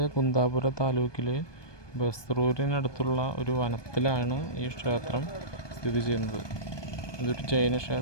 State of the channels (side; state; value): right; late; 1.2 ms